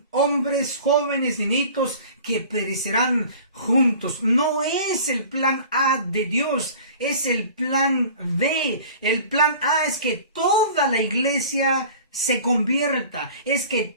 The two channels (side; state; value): both; inverted; correlation -0.44